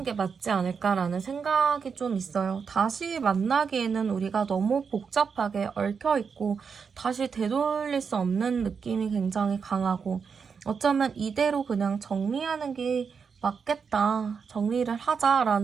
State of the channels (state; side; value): quieter; left; 6.0 dB